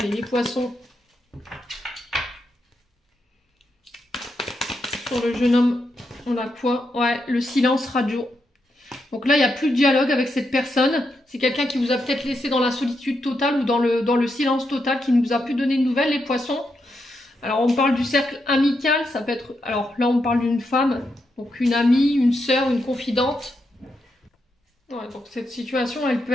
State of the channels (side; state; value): both; normal; correlation 0.83